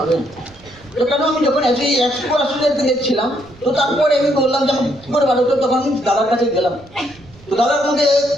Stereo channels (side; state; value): right; noise; rumble, 25 dB below the sound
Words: তো কেন আমি যখন এই অ্যাস্ট্রোকে দেখছিলাম, তো তারপরে আমি বললাম যে আমি কি করে পার হতে, তখন আমি দাদার কাছে গেলাম। তো দাদার মধ্যে